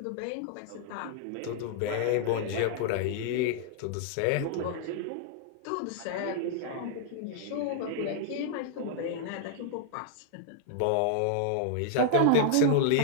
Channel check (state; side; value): different; both; correlation -0.01